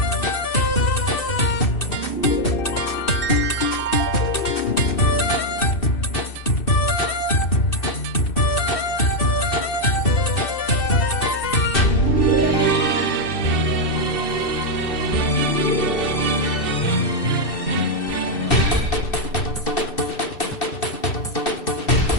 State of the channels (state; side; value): late; right; 2.6 ms